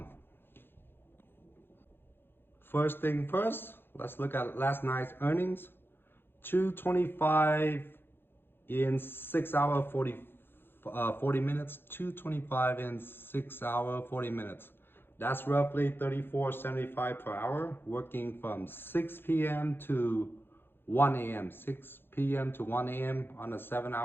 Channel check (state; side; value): late; right; 0.10 ms